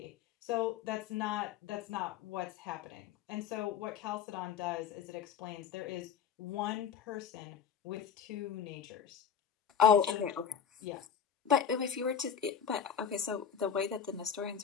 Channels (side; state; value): right; quieter; 7.8 dB